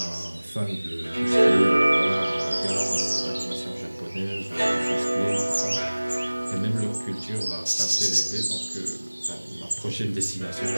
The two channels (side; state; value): both; inverted; correlation -1.00